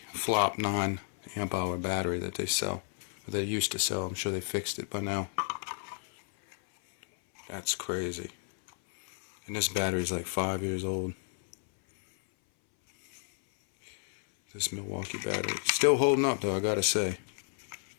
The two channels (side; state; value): right; silent; 57 dB below the other